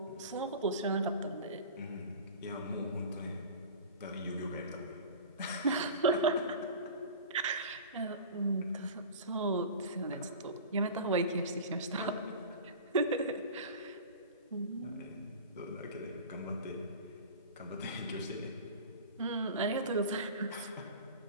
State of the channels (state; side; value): inverted; both; correlation -0.36